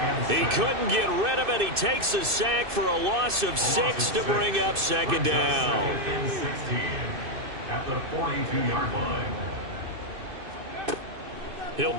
He couldn't get rid of it. He takes a sack for a loss of 6 to bring up second down. At the 42-yard line. He'll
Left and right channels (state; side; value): late; left; 2.6 ms